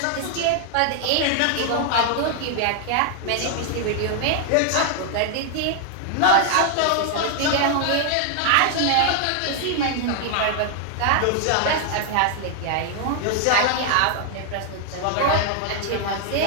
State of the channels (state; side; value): different; both; correlation 0.00